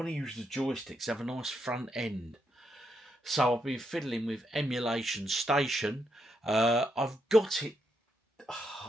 to use the joysticks, have a nice front end. So I've been fiddling with Emulation Station. I've got it.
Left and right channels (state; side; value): normal; both; correlation 0.80